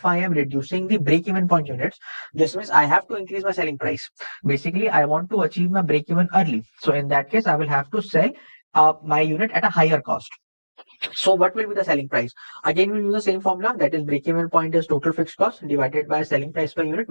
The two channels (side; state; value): both; inverted; correlation -1.00